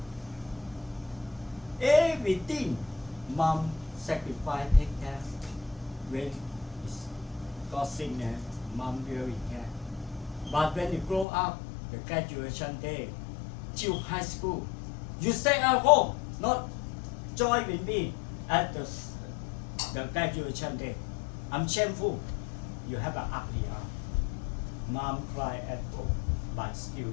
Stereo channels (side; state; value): right; drops out; at 11.2 s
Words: Everything mom sacrifice, take care. When got sickness, mom really care. But when you grow up, the graduation day, till high school, you stay at home, not join with me at the graduation day. I'm shameful. You have an ugly aunt. Mom cry at home, but still